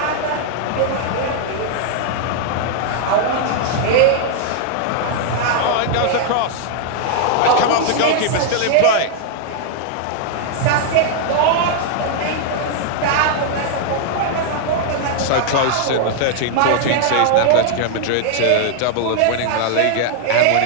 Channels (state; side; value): different; both; correlation -0.01